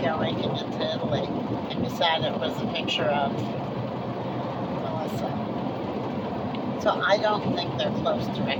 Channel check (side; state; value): both; identical; correlation 1.00